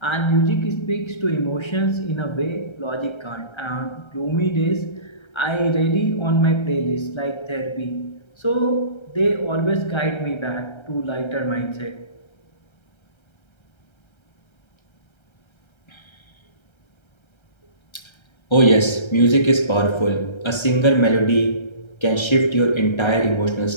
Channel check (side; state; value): right; late; 1.3 ms